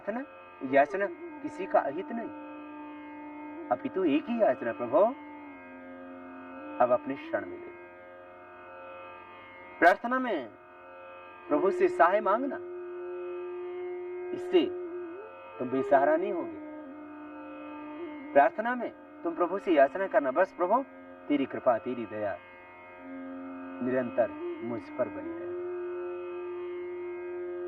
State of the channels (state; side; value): identical; both; correlation 1.00